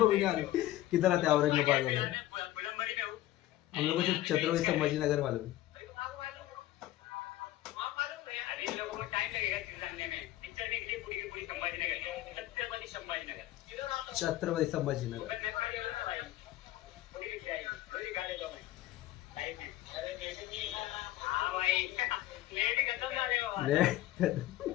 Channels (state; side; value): quieter; right; 14.9 dB